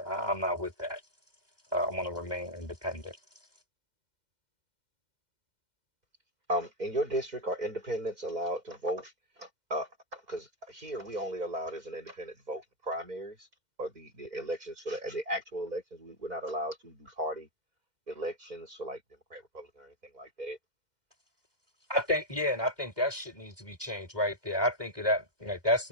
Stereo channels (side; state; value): left; late; 2.1 ms